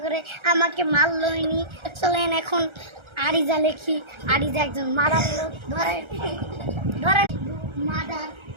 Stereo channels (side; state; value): left; late; 1.3 ms